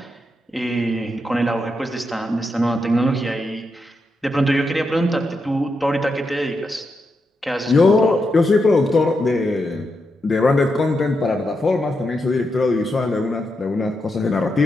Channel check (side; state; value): both; normal; correlation 0.85